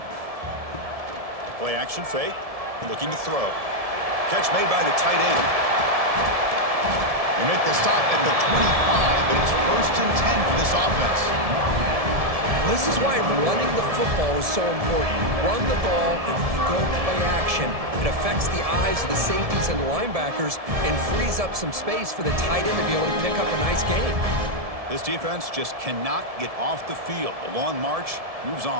Play action fake, looking to throw. Catch made by the tight end. They make the stop at the 25, but it's 1st and 10 for this offense. This is why running the football is so important. You run the ball, and if you go play action, it affects the eyes of the safeties and the linebackers and frees up some space for the tight end to be able to pick up a nice gain. This defense just cannot get off the field. The long march moves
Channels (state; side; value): late; left; 1.7 ms